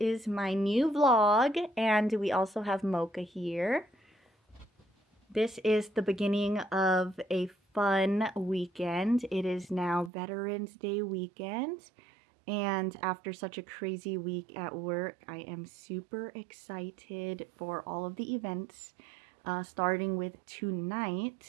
my new vlog, and we also have Mocha here. This is the beginning of a fun weekend. It is now Veterans Day weekend, and after such a crazy week at work, I am super excited for all of the events. Starting with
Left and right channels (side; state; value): left; drops out; at 10.1 s